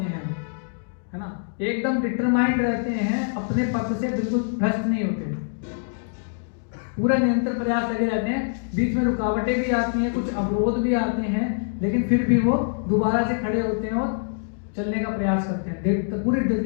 हैं, है ना, एकदम डिटरमाइंड रहते हैं, अपने पथ से बिल्कुल भ्रष्ट नहीं होते, पूरा निरंतर प्रयास लगे रहते हैं। बीच में रुकावटें भी आती हैं, कुछ अवरोध भी आते हैं, लेकिन फिर भी वो दोबारा से खड़े होते हैं और चलने का प्रयास करते हैं पूरी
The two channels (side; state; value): right; silent; digital silence